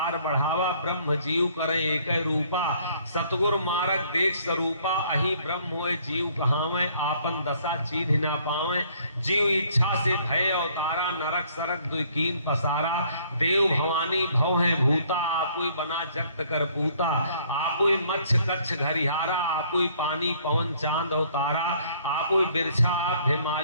बढ़ावा। ब्रह्म जीव करे एक रूपा, सतगुर मारक देख स्वरूपा। अही ब्रह्म होए जीव कहावे, आपन दशा चीन्ह ना पावे। जीव इच्छा से भय अवतारा, नरक सरक दुकीन पसारा। देव भवानी भव है भूता, आपुई बना जगत कर पूता। आपुई मच्छ कच्छ घरिहारा, आपुई पानी पवन चांद अवतारा। आपुई बिरछा आप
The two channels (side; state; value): both; inverted; correlation -0.62